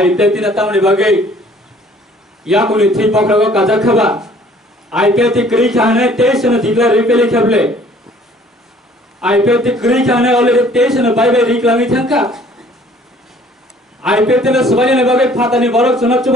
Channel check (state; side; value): normal; both; correlation 0.56